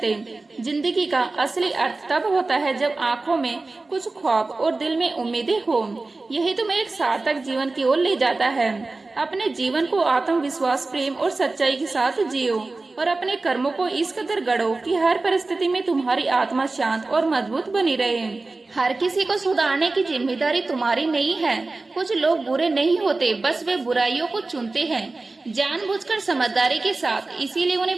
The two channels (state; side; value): quieter; left; 3.4 dB